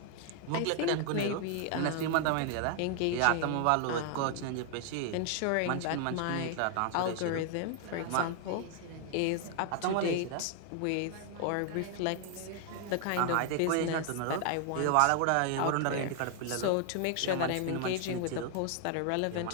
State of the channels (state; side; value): different; both; correlation 0.00